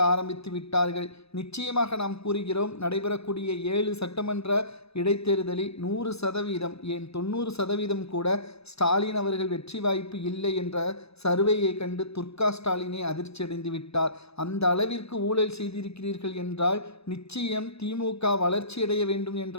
ஆரம்பித்து விட்டார்கள். நிச்சயமாக நாம் கூறுகிறோம், நடைபெறக்கூடிய 7 சட்டமன்ற இடைத்தேர்தலில் 100% ஏன் 90% கூட ஸ்டாலின் அவர்கள் வெற்றி வாய்ப்பு இல்லை என்ற சர்வேயை கண்டு துர்கா ஸ்டாலினை அதிர்ச்சியடைந்து விட்டார். அந்த அளவிற்கு ஊழல் செய்திருக்கிறீர்கள் என்றால் நிச்சயம் திமுக வளர்ச்சியடைய வேண்டும் என்ற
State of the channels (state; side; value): late; right; 0.79 ms